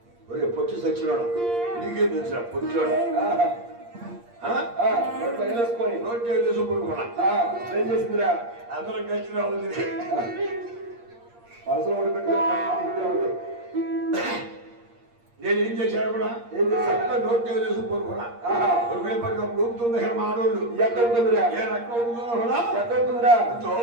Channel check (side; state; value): left; late; 8.6 ms